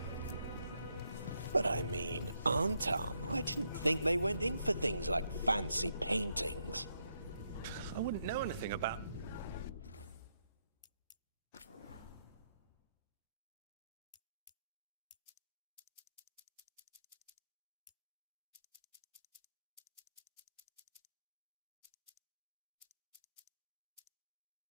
But I mean, Antam, I didn't think they went in for things like fancy paintings. I wouldn't know anything about...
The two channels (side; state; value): both; inverted; correlation -0.79